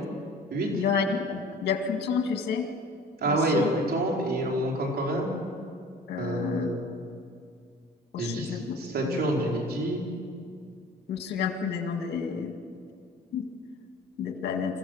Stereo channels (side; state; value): both; normal; correlation 0.44